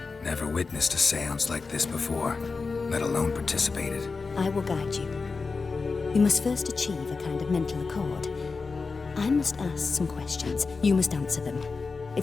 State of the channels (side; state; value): right; quieter; 4.4 dB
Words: Never witnessed a seance like this before, let alone participated. I will guide you. We must first achieve a kind of mental accord. I must ask some questions. You must answer them.